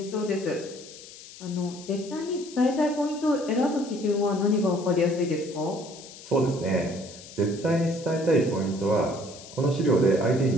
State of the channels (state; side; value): noise; left; hiss, 17 dB below the sound